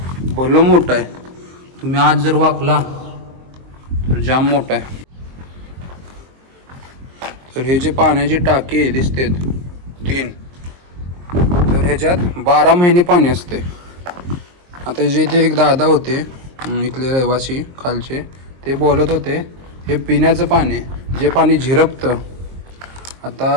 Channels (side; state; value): left; late; 23 ms